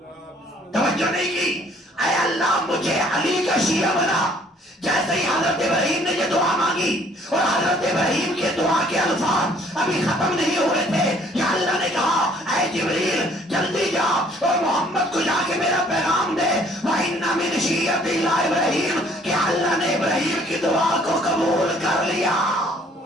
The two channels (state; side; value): normal; both; correlation 0.60